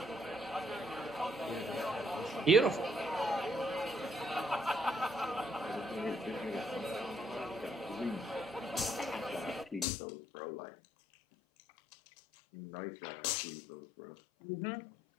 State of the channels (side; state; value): right; drops out; at 9.9 s